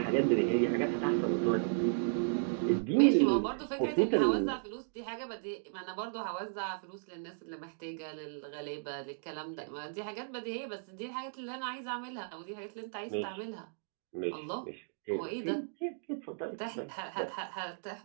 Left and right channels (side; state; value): left; silent; digital silence